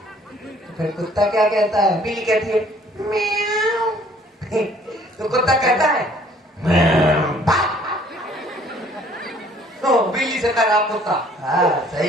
फिर कुत्ता क्या कहता है? बिल्ली कहती है म्याऊ। तो कुत्ता कहता है तो बिल्ली से कह रहा कुत्ता। हाँ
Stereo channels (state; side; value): normal; both; correlation 0.58